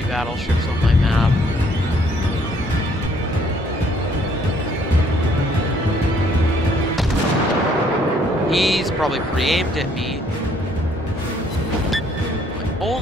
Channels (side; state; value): both; normal; correlation 0.64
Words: battleships on my map. He's probably pre-aimed at me. My